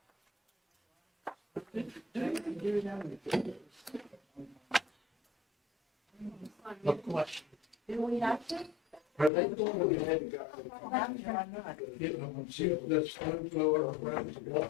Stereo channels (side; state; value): right; drops out; at 9.3 s